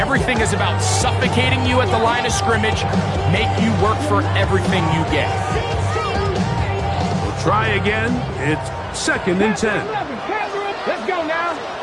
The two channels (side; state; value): both; identical; correlation 1.00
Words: is about suffocating you at the line of scrimmage, make you work for everything you get. We'll try again. It's second and 10. Let's go now.